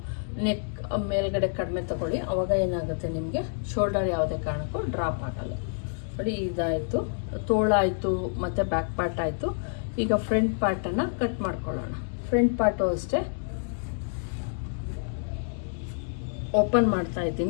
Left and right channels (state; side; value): silent; right; digital silence